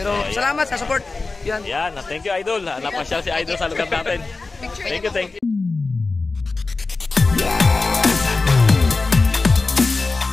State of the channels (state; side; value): quieter; right; 3.7 dB